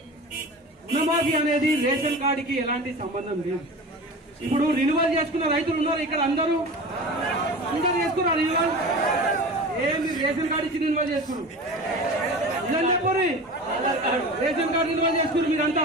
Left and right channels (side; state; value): both; normal; correlation 0.33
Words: రుణమాఫీ అనేది రేషన్ కార్డుకి ఎలాంటి సంబంధం లేదు. ఇప్పుడు రిన్యువల్ చేసుకున్న రైతులు ఉన్నారు ఇక్కడ, అందరూ చేసుకున్నారు రిన్యువల్. ఏమి రేషన్ కార్డు ఇచ్చి రిన్యువల్ చేసుకున్నారు? ఇదని చెప్పండి, రేషన్ కార్డు రిన్యువల్ చేసుకున్నారు మీరంతా